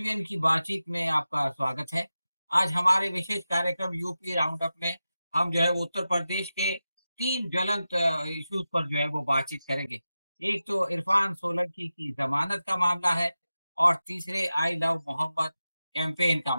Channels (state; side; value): inverted; both; correlation -0.93